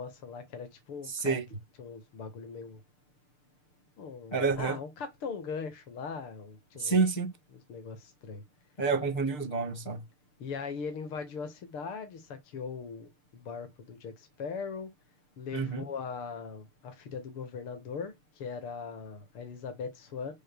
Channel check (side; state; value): right; late; 6.7 ms